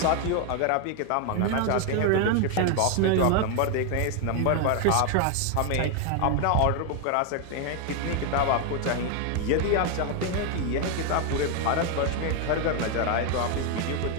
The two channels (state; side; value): different; both; correlation 0.01